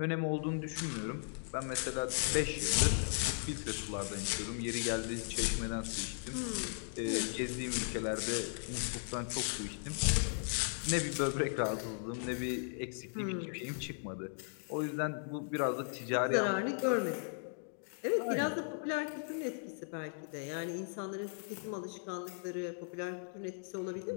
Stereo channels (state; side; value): silent; right; digital silence